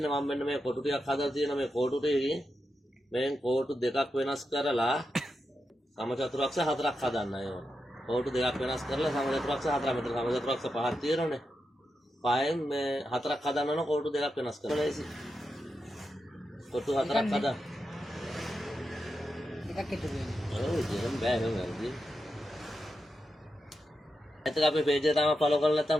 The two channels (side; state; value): both; normal; correlation 0.88